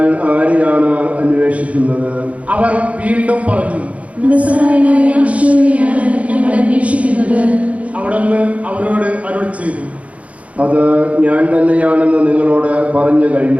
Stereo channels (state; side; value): late; left; 0.066 ms